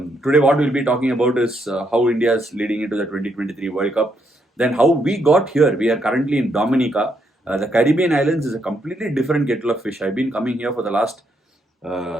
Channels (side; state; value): both; normal; correlation 0.76